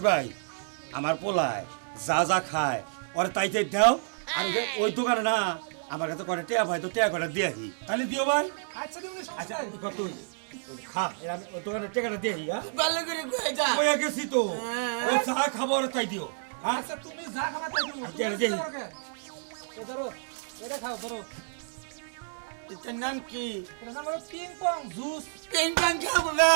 ভাই আমার পোলায় যা যা খায় ওরে তাইতে দাও আর ওই দোকানে না আমার কাছে করে টেয়া ভাই তো টেয়া করে দিয়ে আসি তাহলে দিও ভাই আচ্ছা তুমি আচ্ছা কত খা এর আমি ওই দোকানে টেকাটা দিয়ে আসি হ্যাঁ ভালো করে কয়ে যা ওই গেছি তো ও চা খাবো আর তাই দিও হ্যাঁ আচ্ছা তুমি যা খাবা তাই দেবো আচ্ছা, দেখি। এ ধরো এটা খাও ধরো এটার নাম কি এটা নাম হলো ping pong juice ping pong খাবো না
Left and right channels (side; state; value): left; silent; 58 dB below the other